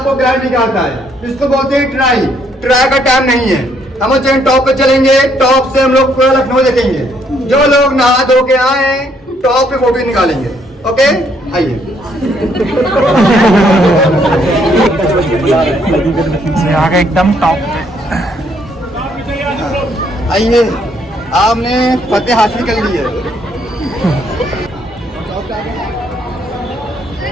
गाइड निकालता है। इसको बोलते हैं ट्राई। ट्राई का टाइम नहीं है। हम चैन टॉप पे चलेंगे, टॉप से हम लोग पूरा लखनऊ देखेंगे। जो लोग नहा धो के आए टॉप पे फोटो निकालेंगे। ओके आइए। आगे एकदम टॉप आइए, आपने फतेह हासिल कर ली है।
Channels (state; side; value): normal; both; correlation 0.69